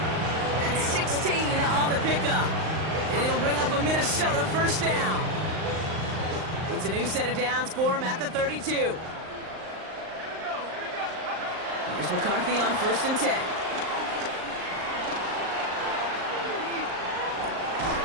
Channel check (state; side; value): late; left; 38 ms